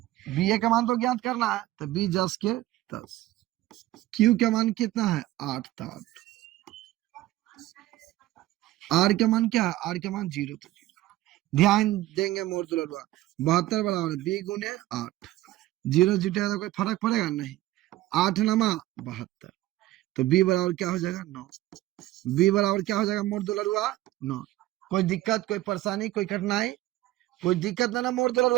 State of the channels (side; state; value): left; quieter; 16.1 dB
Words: ba का मान तो ज्ञात करना है, तो b 10 के 10। q का मान कितना है, 8 था। r का मान क्या है, r का मान 0 था। ध्यान देंगे मोर दुलरुआ, 72 बराबर b गुने 8, 0 जुटेगा तो कोई फर्क पड़ेगा नहीं। 8 नमा 72, तो b बराबर क्या हो जाएगा, 9। b बराबर क्या हो जाएगा मोर दुलरुआ, 9। कोई दिक्कत, कोई परेशानी, कोई कठिनाई, कोई दिक्कत ना मोर